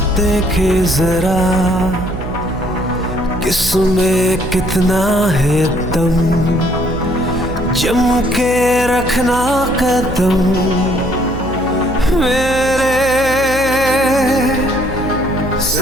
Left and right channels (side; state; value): right; noise; hum, 9 dB below the sound